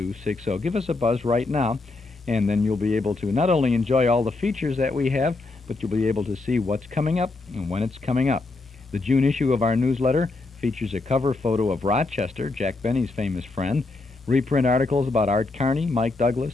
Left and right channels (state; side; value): quieter; right; 3.4 dB